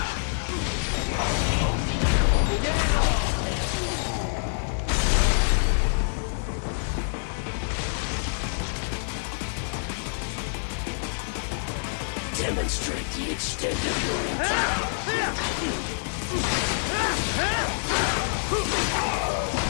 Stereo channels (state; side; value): silent; right; 60 dB below the other